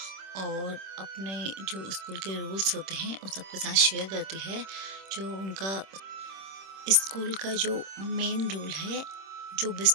और अपने जो स्कूल के रूल्स होते हैं उन सबके साथ शेयर करती है। जो उनका स्कूल का जो मेन रूल है, जो भी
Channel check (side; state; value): left; late; 26 ms